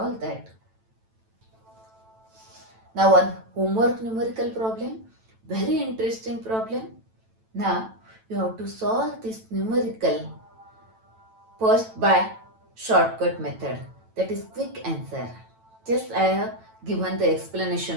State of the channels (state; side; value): late; left; 9.0 ms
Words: that. Now one homework numerical problem. Very interesting problem. Now you have to solve this numerical first by shortcut method. That is quick answer. Just I have given the